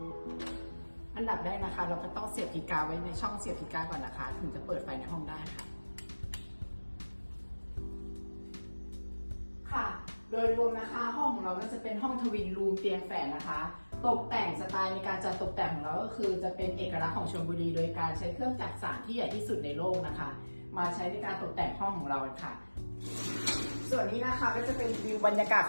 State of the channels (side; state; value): both; inverted; correlation -1.00